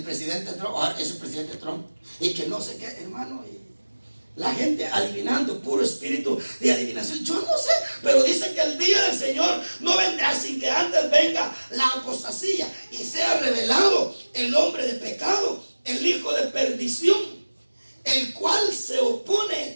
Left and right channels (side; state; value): both; inverted; correlation -1.00